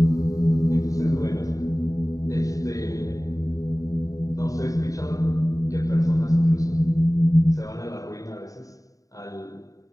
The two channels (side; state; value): right; late; 0.16 ms